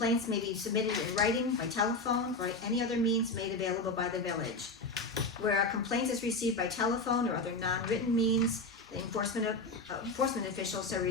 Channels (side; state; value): right; quieter; 3.1 dB